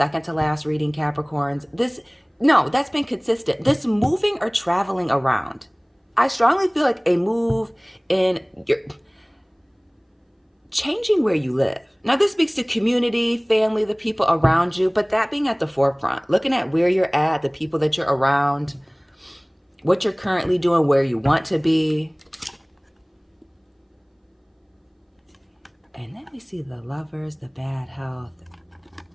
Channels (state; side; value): identical; both; correlation 1.00